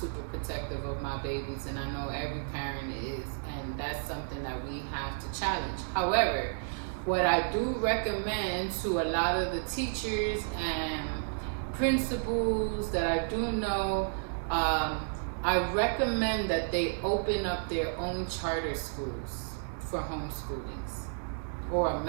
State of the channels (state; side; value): silent; left; digital silence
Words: protective of my babies, and I know every parent is, and that's something that we have to challenge. However, what I do recommend to a lot of the teachers and principals that I do know, I recommend that they open up their own charter schools for homeschoolings, or a